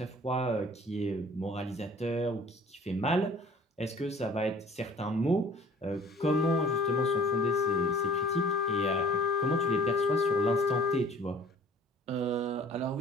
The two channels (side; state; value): both; normal; correlation 0.51